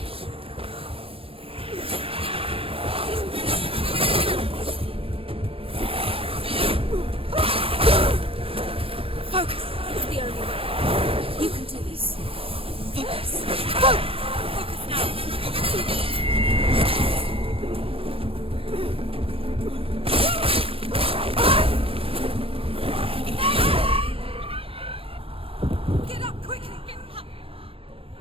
Focus! It's the only way. You can do this. Focus! Focus now! Get up quickly! Get up!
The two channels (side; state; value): left; late; 0.27 ms